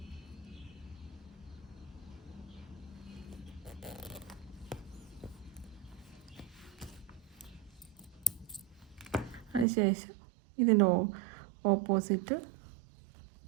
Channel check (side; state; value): left; drops out; at 9.7 s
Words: അതിനുശേഷം ഇതിൻ്റെ ഓപ്പോസിറ്റ്